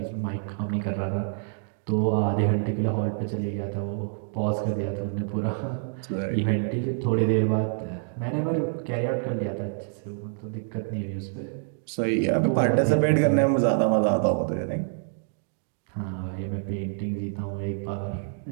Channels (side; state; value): left; silent; digital silence